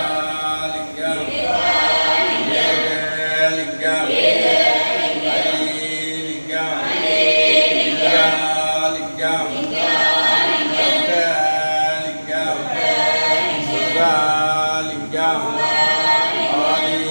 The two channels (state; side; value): inverted; both; correlation -1.00